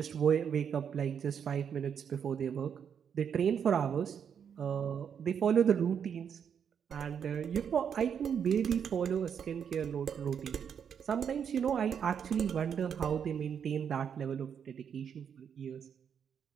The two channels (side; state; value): left; quieter; 7.7 dB